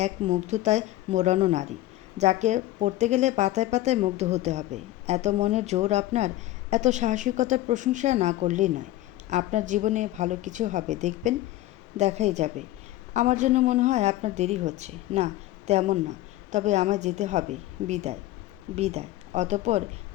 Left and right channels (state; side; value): quieter; right; 15.7 dB